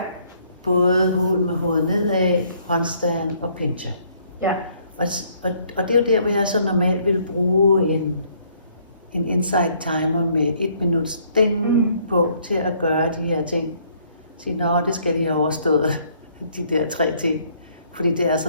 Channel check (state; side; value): inverted; both; correlation -0.65